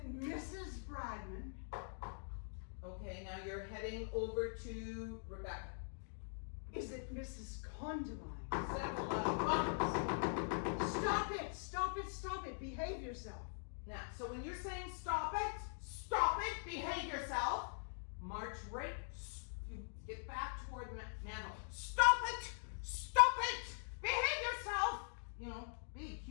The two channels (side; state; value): right; silent; digital silence